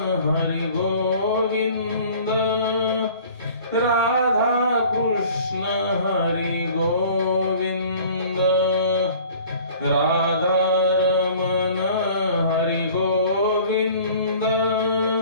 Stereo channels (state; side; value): inverted; both; correlation -0.49